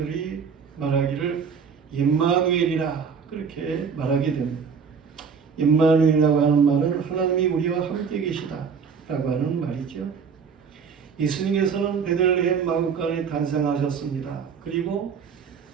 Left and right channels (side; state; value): left; quieter; 6.2 dB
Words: 말하기를 임마누엘이라 그렇게 말하게 됩니다. 임마누엘이라고 하는 말은 하나님이 우리와 함께 계시다라고 하는 말이죠. 예수님께서는 베들레헴 마구간에 탄생하셨습니다. 그리고